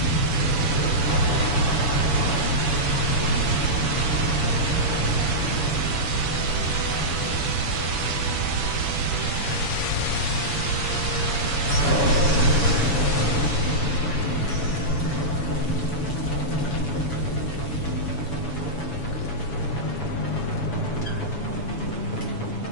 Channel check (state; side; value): late; right; 7.0 ms